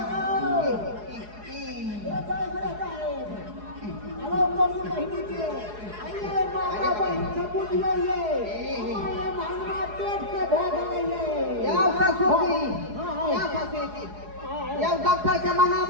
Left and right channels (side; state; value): left; late; 4.8 ms